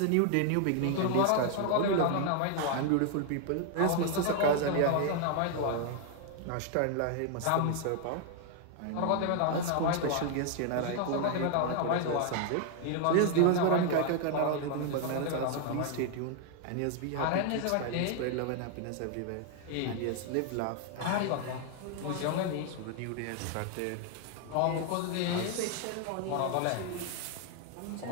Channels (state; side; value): different; both; correlation 0.00